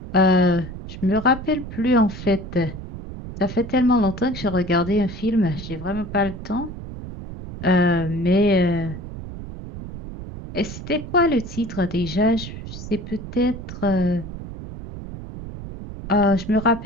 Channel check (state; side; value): noise; right; rumble, 10 dB below the sound